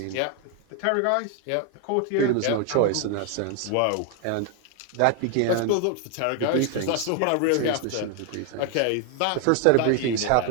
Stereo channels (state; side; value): different; both; correlation 0.01